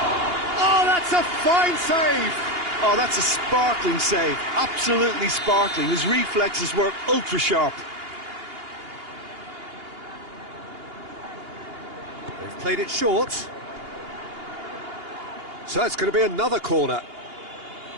Oh, that's a fine save! Oh, that's a sparkling save. Absolutely sparkling. His reflexes were ultra sharp. They've played it short. So it's going to be another corner.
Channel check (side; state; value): left; late; 2.8 ms